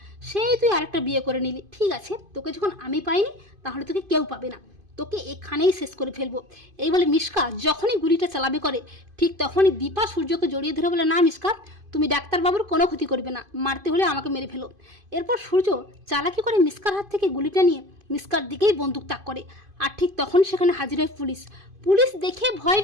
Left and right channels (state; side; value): late; left; 2.5 ms